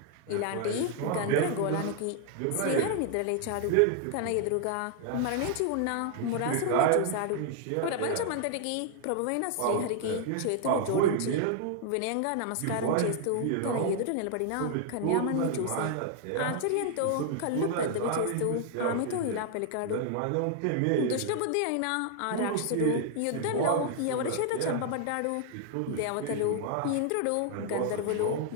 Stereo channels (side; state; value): both; different; correlation 0.00